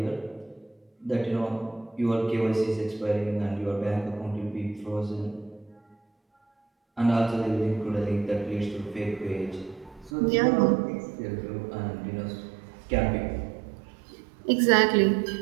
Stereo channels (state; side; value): drops out; left; at 10.1 s